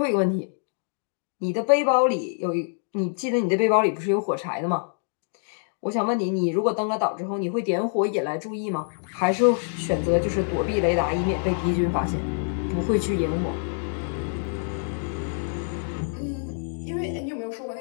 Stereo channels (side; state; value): right; silent; digital silence